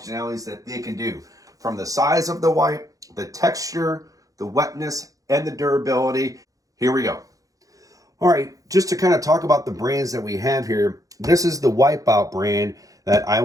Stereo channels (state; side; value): late; left; 0.17 ms